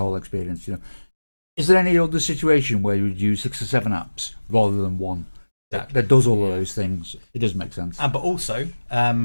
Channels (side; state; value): both; inverted; correlation -1.00